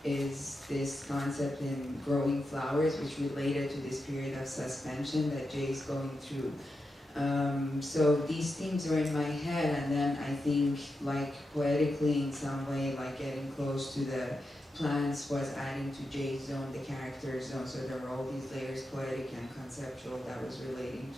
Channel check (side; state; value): both; normal; correlation 0.88